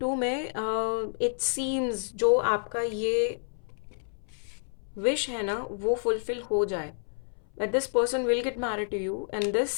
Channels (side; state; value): right; silent; 58 dB below the other